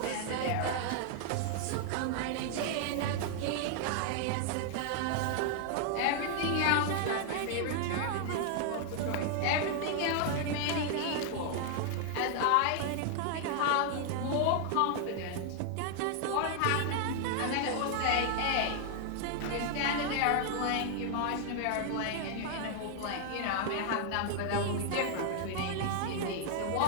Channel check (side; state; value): both; different; correlation 0.00